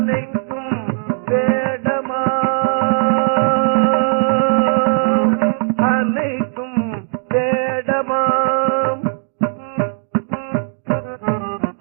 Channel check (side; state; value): left; silent; 68 dB below the other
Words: வேடமா அனைத்தும் வேடமாம்